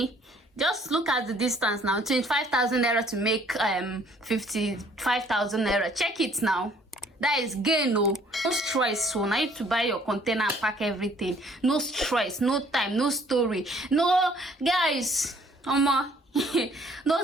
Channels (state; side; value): normal; both; correlation 0.59